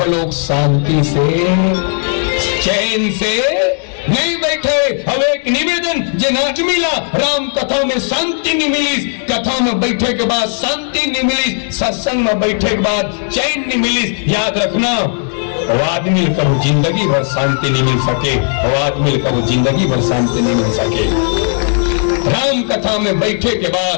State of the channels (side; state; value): right; silent; 57 dB below the other